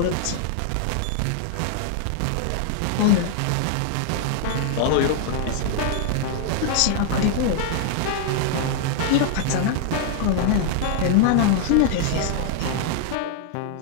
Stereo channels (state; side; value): different; both; correlation 0.00